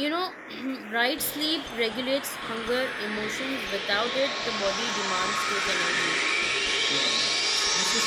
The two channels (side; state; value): both; identical; correlation 1.00